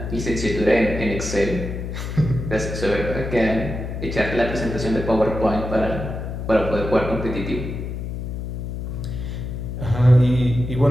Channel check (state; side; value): noise; left; hum, 5 dB below the sound